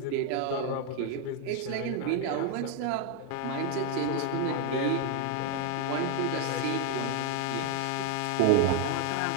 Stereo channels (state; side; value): different; both; correlation 0.01